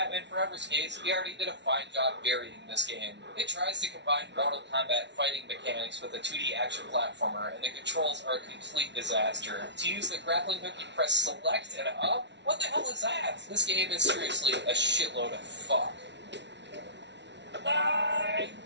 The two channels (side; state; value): left; late; 0.51 ms